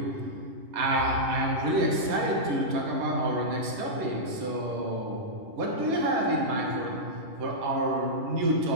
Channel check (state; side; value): late; left; 10 ms